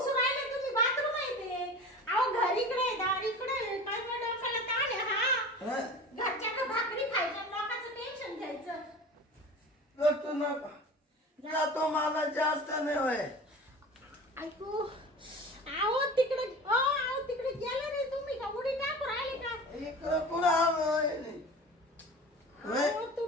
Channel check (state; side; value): normal; both; correlation 0.36